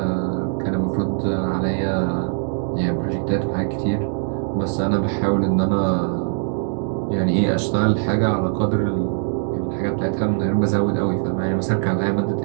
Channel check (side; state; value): left; silent; digital silence